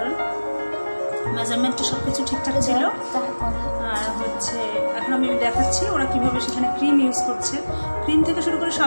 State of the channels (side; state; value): both; inverted; correlation -1.00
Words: মেজারমেন্টটা সব কিছু ঠিকঠাক ছিল। আর হচ্ছে এখন আমি দেখাচ্ছি ওরা কীভাবে সেখানে ক্রিম ইউজ করছে। ক্রিম থেকে শুরু করে